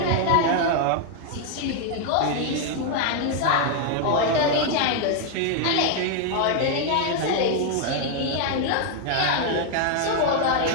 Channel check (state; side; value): different; both; correlation 0.00